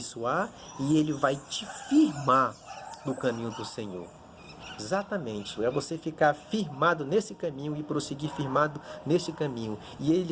e ele vai te firmar no caminho do Senhor. Exatamente, é você ficar firmado nesse caminho e prosseguir firmado nesse caminho. E ele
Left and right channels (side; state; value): both; identical; correlation 1.00